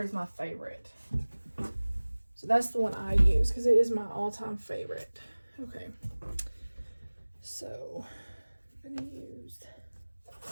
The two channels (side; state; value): both; inverted; correlation -1.00